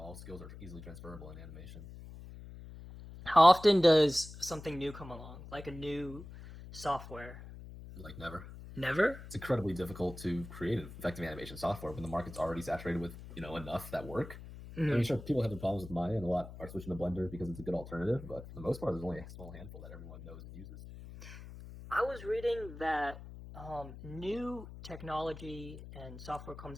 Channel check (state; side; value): noise; left; hum, 14 dB below the sound